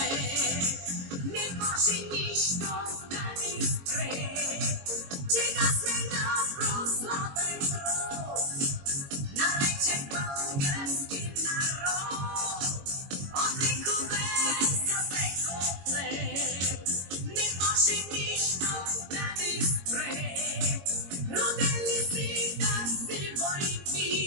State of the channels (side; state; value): left; late; 22 ms